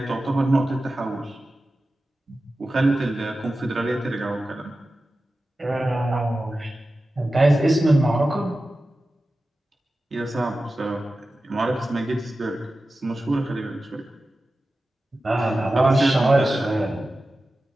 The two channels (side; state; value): both; normal; correlation 0.94